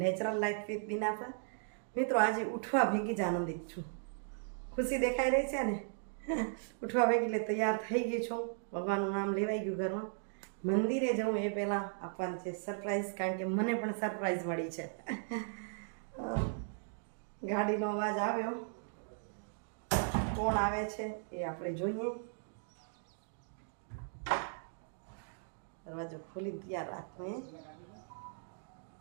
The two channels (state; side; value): silent; left; digital silence